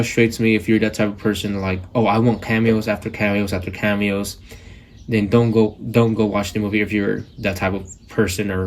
me if you're that type of person like, oh, I want cameos after cameos after cameos. Then don't go watch the movie if you're that type of person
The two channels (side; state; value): both; identical; correlation 1.00